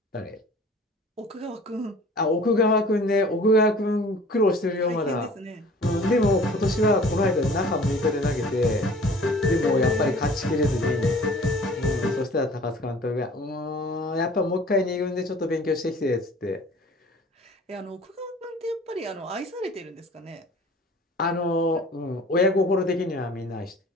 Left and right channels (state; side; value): normal; both; correlation 0.47